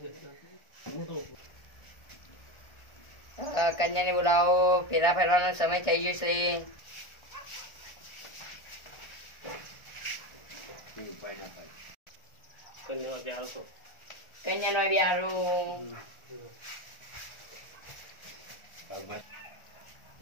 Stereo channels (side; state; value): right; late; 1.4 ms